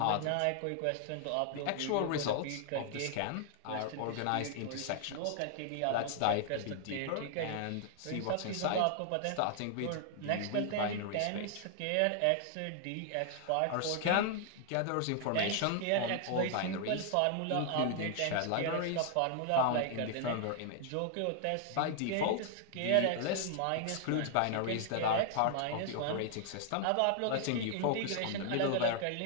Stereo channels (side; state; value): both; different; correlation 0.00